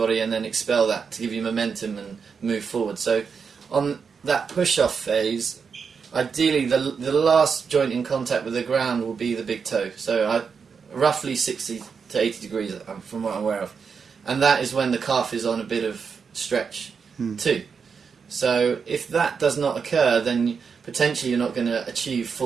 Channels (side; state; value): left; quieter; 5.9 dB